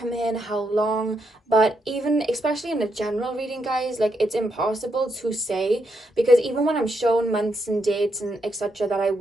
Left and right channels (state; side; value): normal; both; correlation 0.80